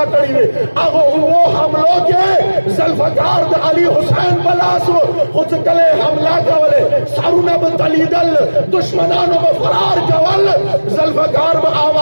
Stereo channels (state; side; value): inverted; both; correlation -1.00